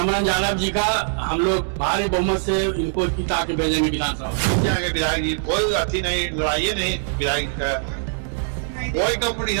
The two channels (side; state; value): left; silent; 64 dB below the other